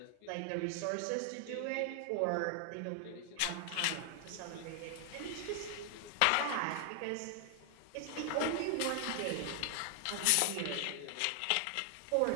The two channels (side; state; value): both; different; correlation 0.00